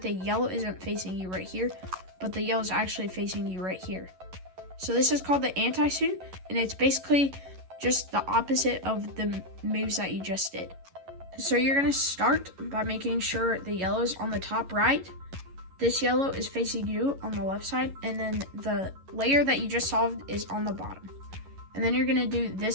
the yellow isn't facing you right here, but the yellow is actually facing you right here. So this is called the anti-soon, and it's basically just the opposite of the moves that you just did. So you're going to start by making sure the yellow is on the top right, this yellow is facing you on the left side, and then the layer that you just solved is on the bottom. And then you're going to do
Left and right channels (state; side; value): late; left; 11 ms